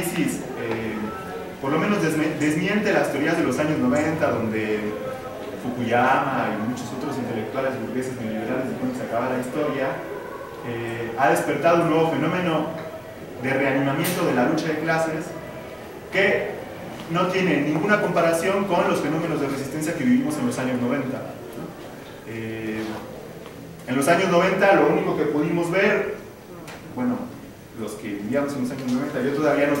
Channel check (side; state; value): both; identical; correlation 1.00